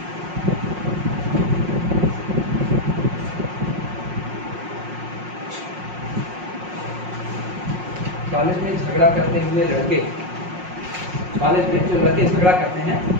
College में झगड़ा करते हुए लड़के, कॉलेज में जो लड़के झगड़ा करते हैं,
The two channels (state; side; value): late; left; 5.5 ms